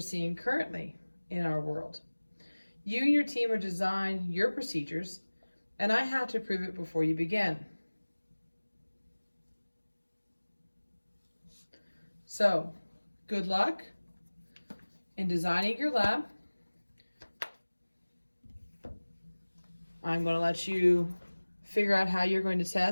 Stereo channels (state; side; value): inverted; both; correlation -1.00